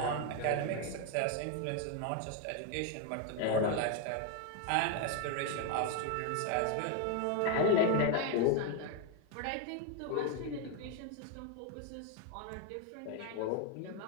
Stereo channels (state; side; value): different; both; correlation 0.01